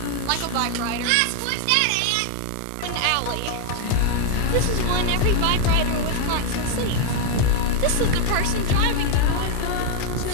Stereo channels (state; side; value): different; both; correlation 0.01